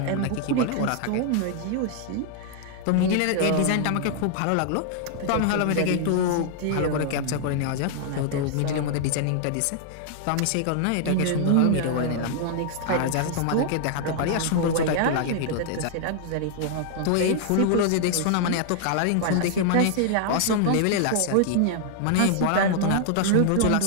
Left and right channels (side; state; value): both; different; correlation 0.00